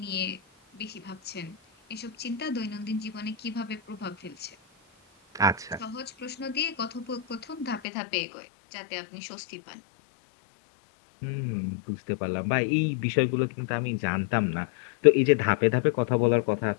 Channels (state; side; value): drops out; right; at 7.8 s